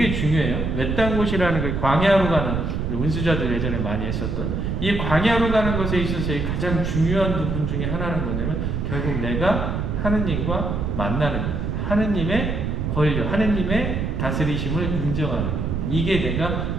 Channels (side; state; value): right; noise; rumble, 1 dB below the sound